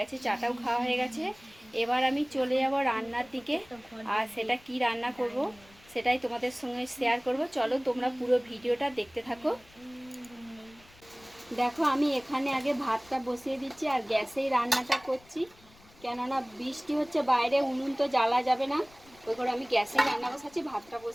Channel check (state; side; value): noise; left; rumble, 26 dB below the sound